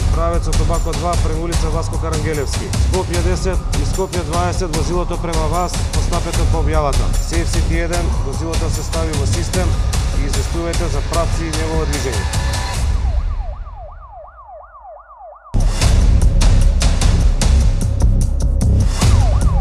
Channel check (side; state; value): both; identical; correlation 1.00